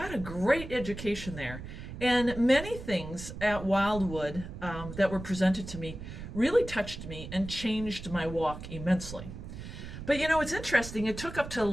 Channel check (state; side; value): noise; right; rumble, 10 dB below the sound